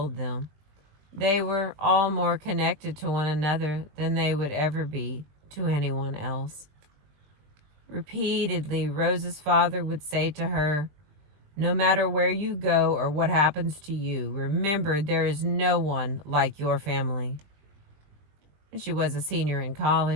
them, they were all more connected to one another than they would ever be to anyone else. Repeatedly, Rose's father would say to her, "No matter where you go or what happens to you, remember there is no one like your family." When she was a senior in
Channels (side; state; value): left; late; 20 ms